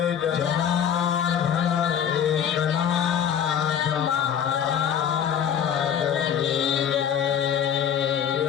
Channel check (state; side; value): quieter; right; 8.7 dB